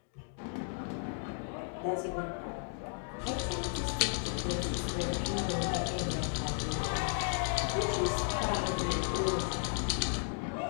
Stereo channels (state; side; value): silent; right; 55 dB below the other